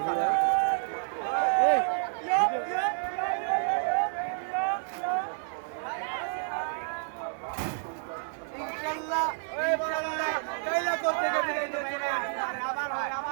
ইনশাআল্লাহ কাইলা করতে গেলে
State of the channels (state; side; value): silent; left; 58 dB below the other